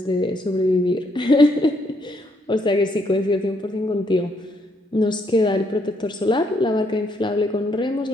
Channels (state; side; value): normal; both; correlation 0.73